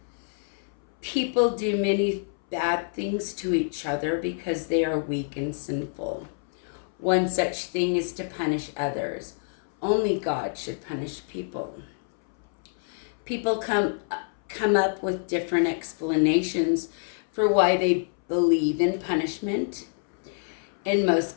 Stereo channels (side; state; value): right; silent; 60 dB below the other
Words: People do many bad things to each other because they are weak and sinful. One such thing is to punish others. Only God should punish people. People come up with different explanations for why they believe in punishment. In most